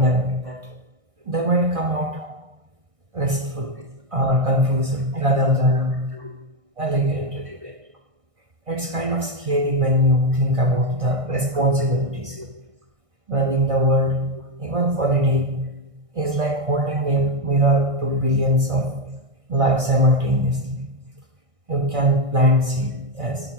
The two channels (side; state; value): left; late; 1.6 ms